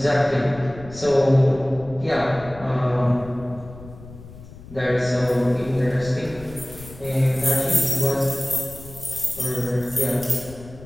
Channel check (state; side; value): noise; left; rumble, 17 dB below the sound